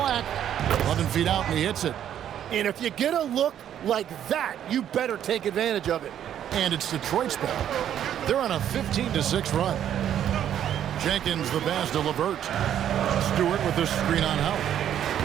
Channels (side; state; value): left; quieter; 10.2 dB